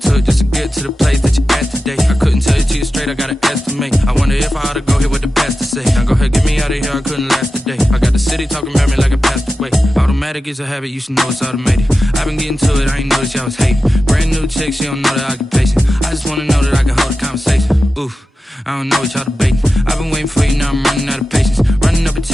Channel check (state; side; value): normal; both; correlation 0.92